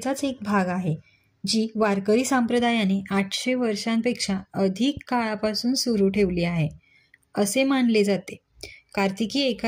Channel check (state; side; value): identical; both; correlation 1.00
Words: एक भाग आहे, जी वारकरी संप्रदायाने 800 वर्षांपेक्षा अधिक काळापासून सुरू ठेवली आहे असे मानले जाते. कार्तिकी